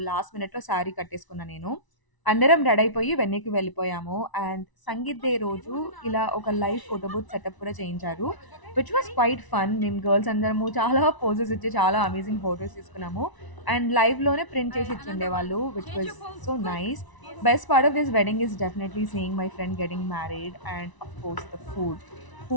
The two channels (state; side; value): late; right; 1.0 ms